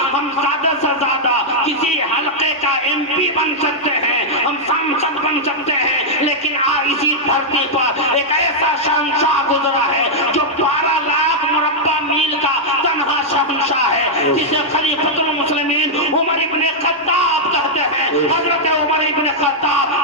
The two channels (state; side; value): normal; both; correlation -0.05